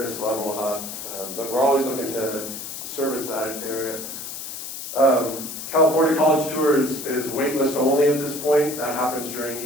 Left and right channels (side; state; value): left; noise; hiss, 8 dB below the sound